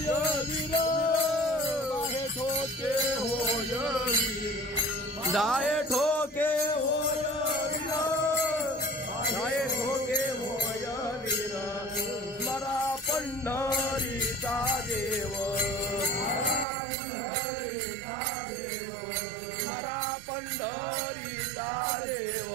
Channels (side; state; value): left; drops out; at 16.7 s